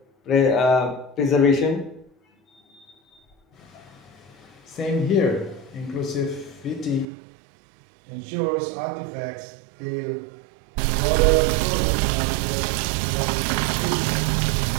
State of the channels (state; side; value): drops out; left; at 7.1 s